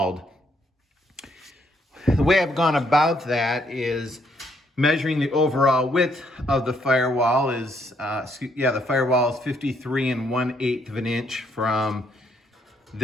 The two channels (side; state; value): both; normal; correlation 0.71